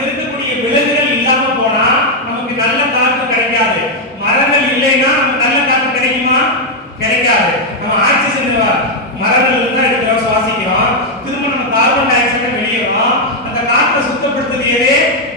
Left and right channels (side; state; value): both; normal; correlation 0.00